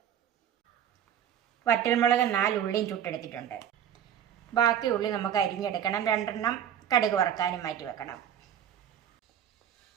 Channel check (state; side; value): quieter; left; 9.7 dB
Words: വറ്റൽമുളക് 4 ഉള്ളിയും ചുട്ടെടുത്തിട്ടുണ്ട്. ബാക്കി ഉള്ളി നമുക്ക് അരിഞ്ഞെടുക്കണം. 2 കടുക് വറുക്കാനും മാറ്റി വെക്കണം.